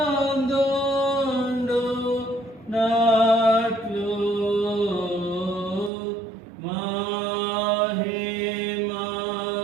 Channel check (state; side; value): drops out; left; at 5.9 s